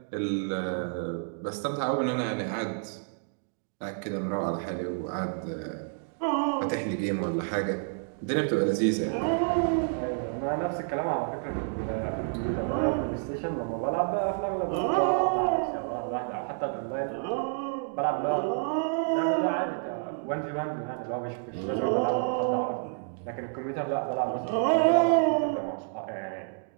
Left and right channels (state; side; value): silent; left; digital silence